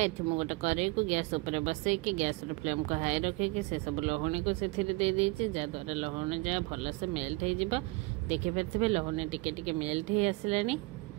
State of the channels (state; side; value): quieter; left; 23.4 dB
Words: मुझे गोटे कड़े को गैस उपर बसई कि गैस फ्लेम को हाई रखिकी से सब लहुणी को से जहाद्वारा लहुणी जहाँ भल से मेल्ट हो। देखिपे लहुणी टिके मेल्ट हो आसला।